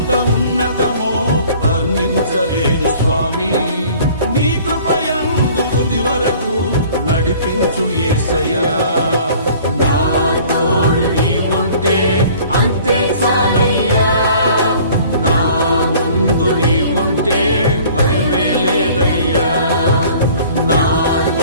ఉన్నతమో వర్ణించలేను స్వామి, నీ కృప యందు తుది వరకు నడిపించు యేసయ్యా.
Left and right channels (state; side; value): inverted; both; correlation -0.50